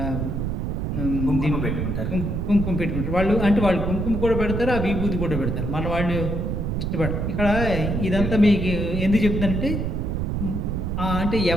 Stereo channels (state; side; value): noise; right; rumble, 1 dB below the sound